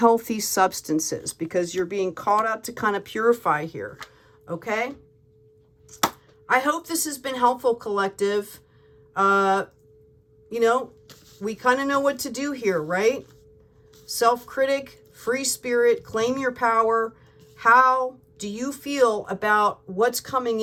substances, because you're being called out to kind of purify here, okay? I hope this has been helpful, collective. You know, we kind of know what to do here, right? Self-critic, free spirit, claim your power. How do you feel about what's coming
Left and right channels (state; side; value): identical; both; correlation 1.00